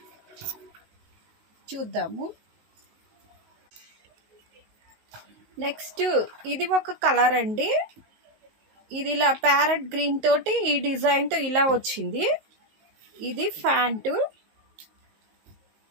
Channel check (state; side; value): late; left; 19 ms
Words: చూద్దాము. నెక్స్ట్ ఇది ఒక కలర్ అండి. ఇది ఇలా ప్యారెట్ గ్రీన్ తోటి ఈ డిజైన్తో ఇలా వచ్చింది. ఇది ప్యాంటు,